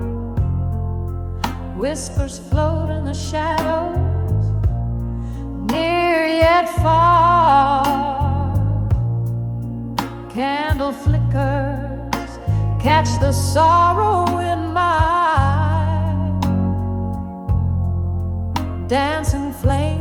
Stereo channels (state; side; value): identical; both; correlation 1.00